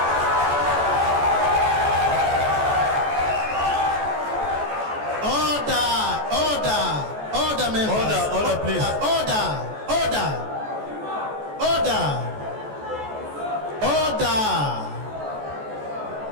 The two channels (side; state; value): left; late; 14 ms